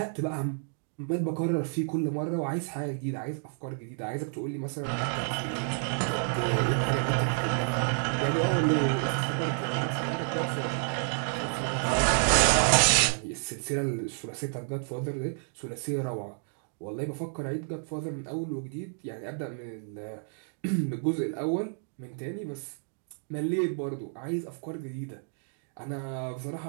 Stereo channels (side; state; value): left; silent; 57 dB below the other